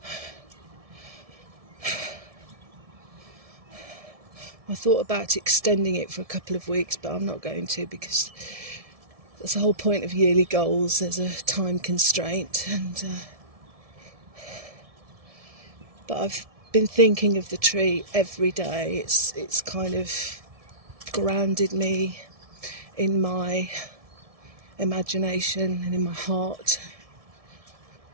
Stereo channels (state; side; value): late; left; 1.7 ms